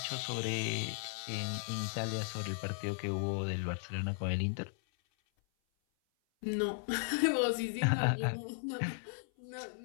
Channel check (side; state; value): right; silent; 54 dB below the other